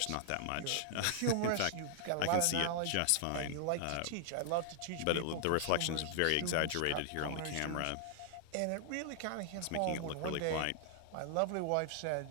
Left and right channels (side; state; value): both; different; correlation 0.00